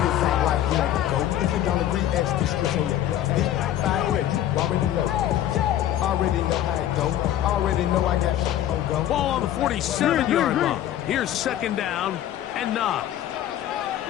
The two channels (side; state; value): right; quieter; 11.9 dB